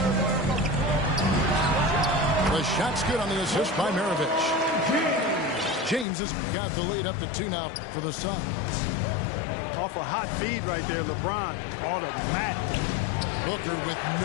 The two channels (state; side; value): drops out; right; at 6.1 s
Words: The shot's good on the assist by Maravich. James has got the lead up to 2 now for the Suns. Off a hot feed right there, LeBron. Automatic. Booker with